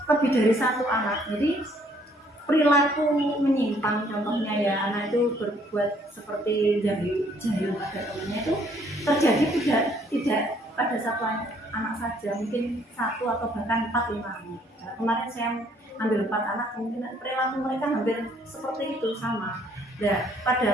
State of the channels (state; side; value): normal; both; correlation 0.64